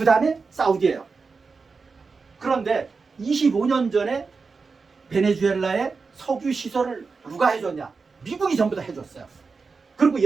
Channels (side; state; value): left; quieter; 4.6 dB